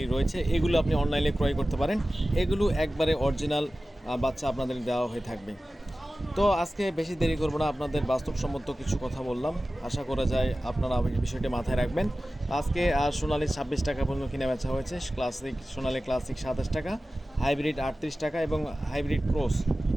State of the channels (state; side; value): normal; both; correlation 0.96